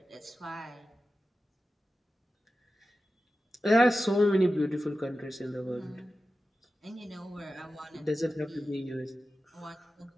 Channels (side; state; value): both; normal; correlation 0.93